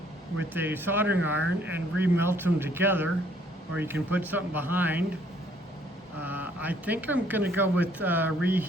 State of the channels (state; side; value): normal; both; correlation 0.63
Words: with a soldering iron and remelt them together, or you can put something behind. I think I'm gonna go with